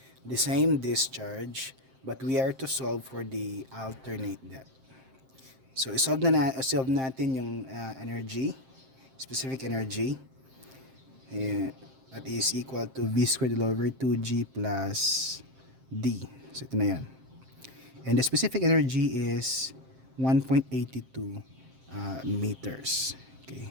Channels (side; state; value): left; late; 7.6 ms